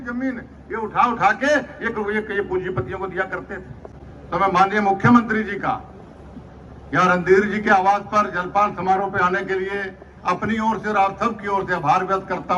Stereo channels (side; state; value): both; identical; correlation 1.00